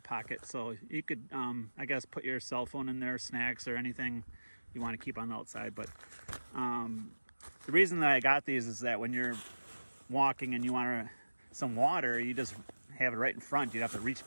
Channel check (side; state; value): both; inverted; correlation -1.00